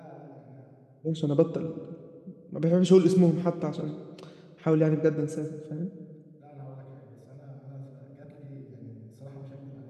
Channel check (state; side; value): identical; both; correlation 1.00